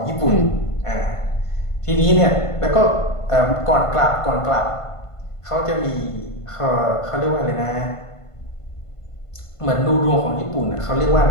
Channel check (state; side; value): late; right; 1.5 ms